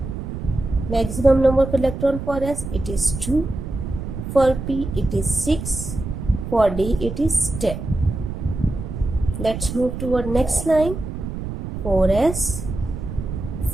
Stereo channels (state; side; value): noise; right; rumble, 7 dB below the sound